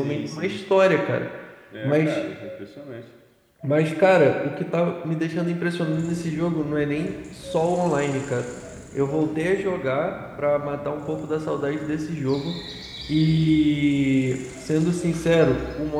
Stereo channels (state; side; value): identical; both; correlation 1.00